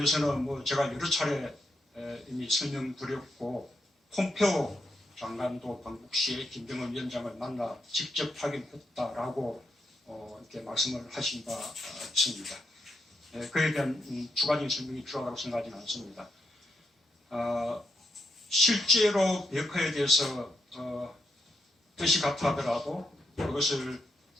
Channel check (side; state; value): both; normal; correlation 0.81